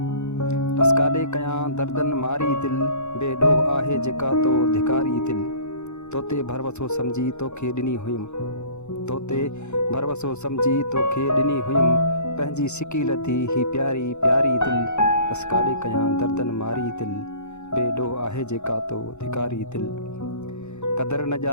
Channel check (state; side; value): late; right; 0.82 ms